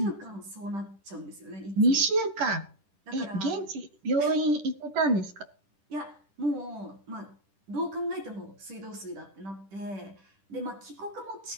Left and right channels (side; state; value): left; late; 10 ms